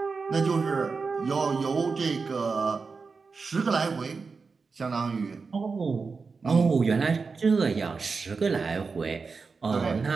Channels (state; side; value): quieter; left; 4.7 dB